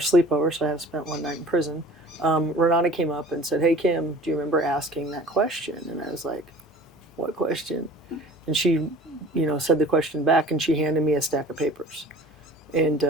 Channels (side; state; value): both; normal; correlation 0.45